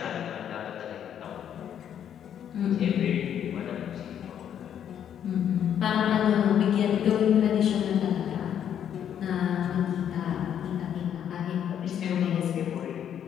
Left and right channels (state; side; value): quieter; right; 9.4 dB